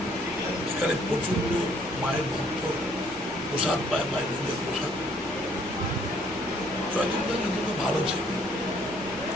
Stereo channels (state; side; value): noise; right; rumble, 23 dB below the sound